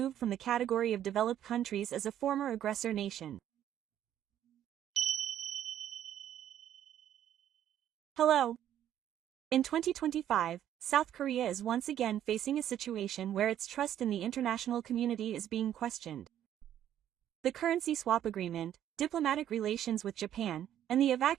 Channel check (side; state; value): left; quieter; 11.0 dB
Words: from the category of developed countries as a former aggressor nation. Hello. In 2025, South Korea is once again facing a situation where its trust in the international community is being questioned. The currency swap agreement, diplomatic relations with Japan, and the